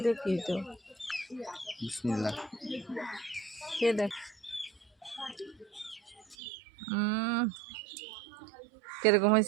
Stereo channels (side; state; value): left; drops out; at 6.4 s